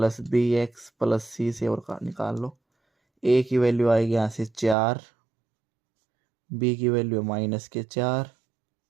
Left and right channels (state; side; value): drops out; left; at 4.8 s